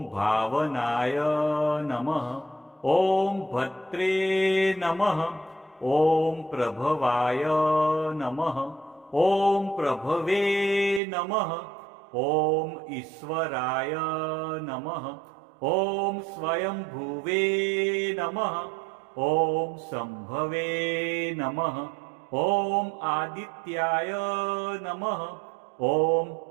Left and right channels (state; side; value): drops out; left; at 11.0 s